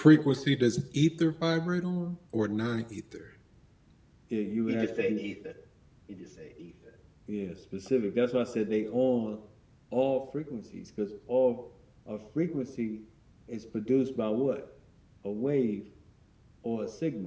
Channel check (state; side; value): identical; both; correlation 1.00